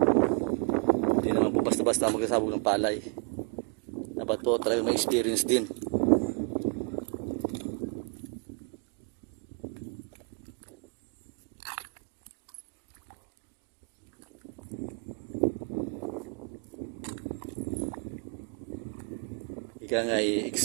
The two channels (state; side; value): quieter; left; 36.6 dB